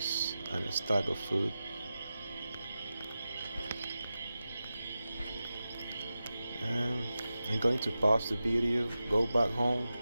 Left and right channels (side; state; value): both; inverted; correlation -0.93